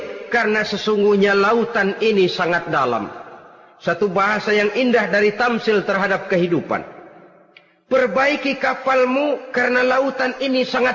karena sesungguhnya lautan ini sangat dalam. Satu bahasa yang indah dari tamsil terhadap kehidupan. Perbaiki kapalmu karena lautan ini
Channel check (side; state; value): both; identical; correlation 1.00